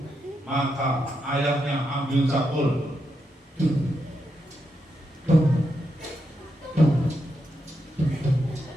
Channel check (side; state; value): both; normal; correlation 0.83